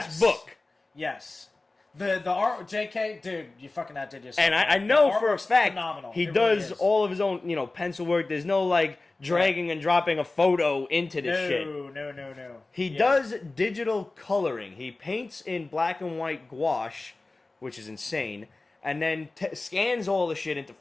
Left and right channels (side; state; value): right; quieter; 3.2 dB